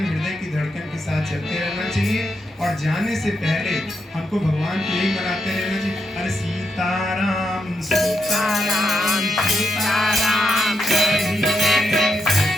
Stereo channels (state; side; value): normal; both; correlation 0.83